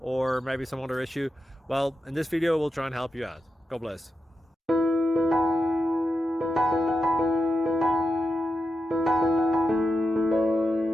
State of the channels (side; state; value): both; normal; correlation 0.88